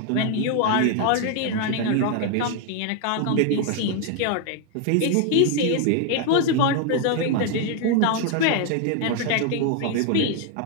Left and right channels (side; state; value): both; different; correlation 0.00